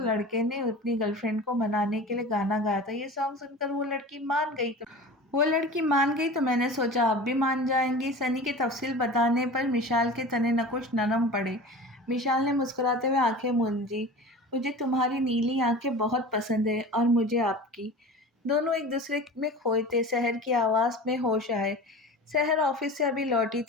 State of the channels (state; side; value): normal; both; correlation 0.35